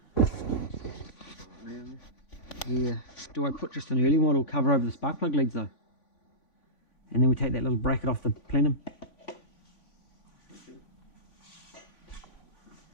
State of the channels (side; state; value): right; late; 3.5 ms